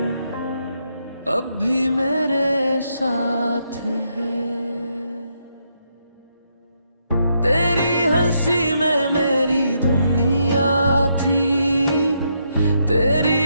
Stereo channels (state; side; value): inverted; both; correlation -0.78